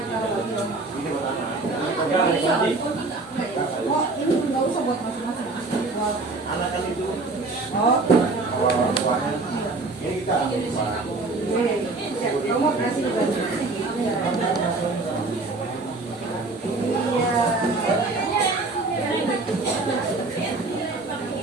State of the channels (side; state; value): left; quieter; 3.4 dB